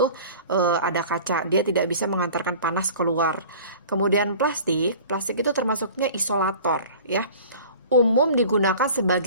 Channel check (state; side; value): inverted; both; correlation -0.43